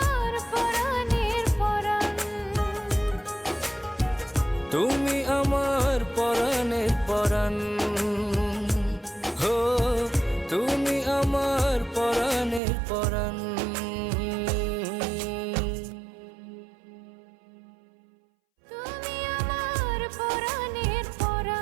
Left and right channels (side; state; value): left; drops out; at 12.6 s